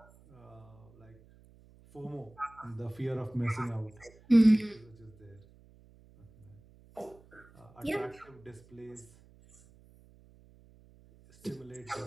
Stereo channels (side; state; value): right; noise; hum, 25 dB below the sound